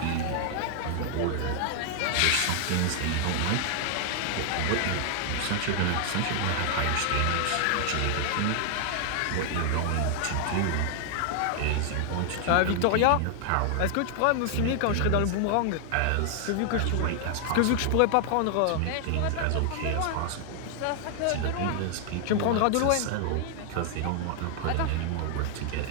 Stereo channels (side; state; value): both; different; correlation 0.00